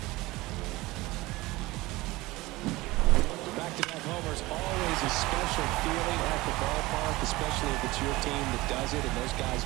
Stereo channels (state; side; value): quieter; left; 20.2 dB